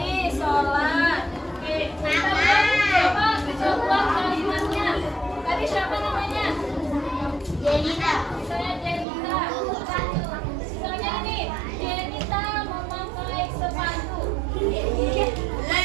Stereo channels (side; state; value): left; drops out; at 9.1 s